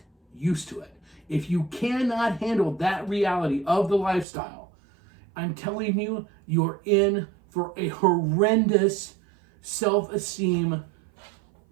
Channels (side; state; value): left; drops out; at 4.2 s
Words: used to it. If you cannot handle that reality of the lifestyle, I'm telling you, you're in for a horrendous self-esteem